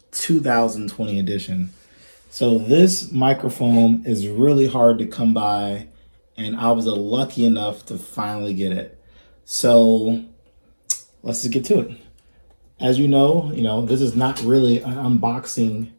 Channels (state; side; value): inverted; both; correlation -1.00